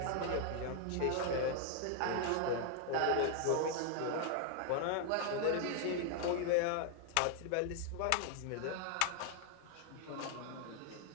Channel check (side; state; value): both; different; correlation 0.00